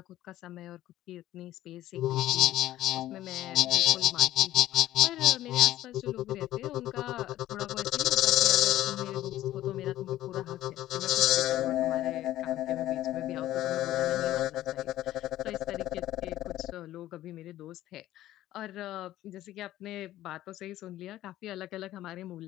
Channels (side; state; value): right; quieter; 14.2 dB